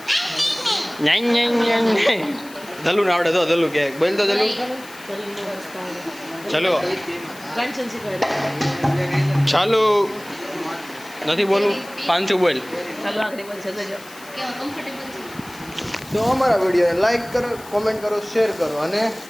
ધલું ને આવડે તો ધલું કે બોલ તો ધલું ચલો ચાલો નથી બોલું પાંચું બોલ. કેવા કમ્ફર્ટેબલ છે. તો અમારા વિડીયોને લાઈક કરો કોમેન્ટ કરો શેર કરો અને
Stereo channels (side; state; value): left; noise; hiss, 20 dB below the sound